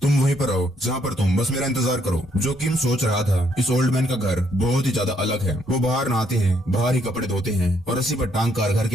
तुम वहीं पर रहो जहाँ पर तुम, बस मेरा इंतजार करो। जो किम सोच रहा था, इस ओल्ड मैन का घर बहुत ही ज्यादा अलग है। वो बाहर नहाते हैं, बाहर ही कपड़े धोते हैं और रस्सी पर टांग कर घर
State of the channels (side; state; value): both; normal; correlation 0.71